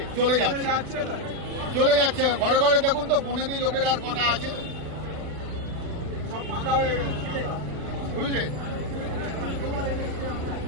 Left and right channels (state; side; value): late; left; 40 ms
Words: যাচ্ছে ঘরে ঘরে। দেখুন তো বনেদি লোকের আর কটা আছে, বুঝলেন?